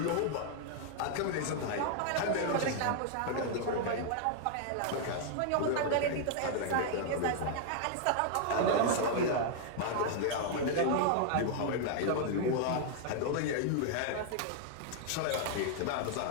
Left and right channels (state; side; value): different; both; correlation 0.00